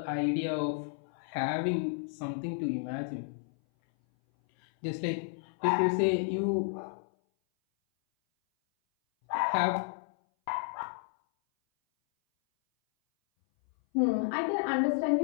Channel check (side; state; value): right; silent; 57 dB below the other